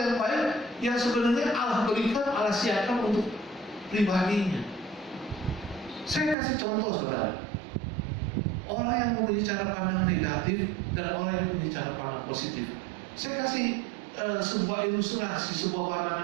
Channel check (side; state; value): left; drops out; at 6.4 s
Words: yang baik yang sebenarnya Allah berikan, Allah siapkan untuk pribadinya. Saya kasih contoh, saudara. Orang yang mempunyai cara pandang negatif dan orang yang mempunyai cara pandang positif. Saya kasih sebuah ilustrasi, sebuah